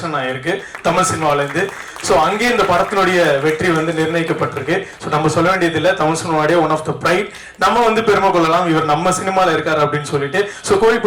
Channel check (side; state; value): both; identical; correlation 1.00